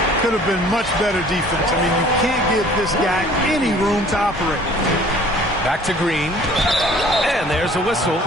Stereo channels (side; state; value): both; normal; correlation 0.52